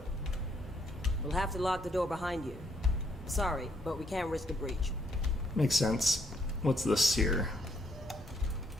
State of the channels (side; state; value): both; normal; correlation 0.70